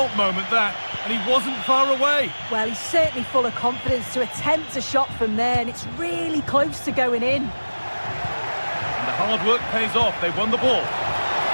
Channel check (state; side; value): inverted; both; correlation -1.00